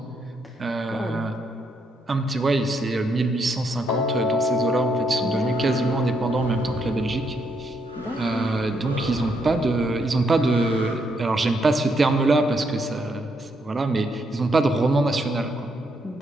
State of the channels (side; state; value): both; normal; correlation 0.76